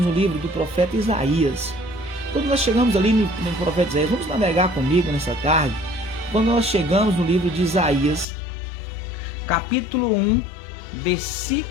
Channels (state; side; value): drops out; right; at 8.2 s